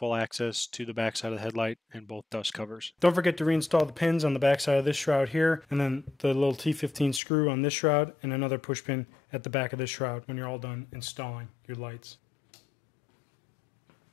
access to the back side of the headlight and both dust covers. Don't forget to reinstall the pins on the back side of this shroud here, and then the little T15 screw on this shroud and another push pin at the back of this shroud when you're all done installing your lights.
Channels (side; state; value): right; drops out; at 7.2 s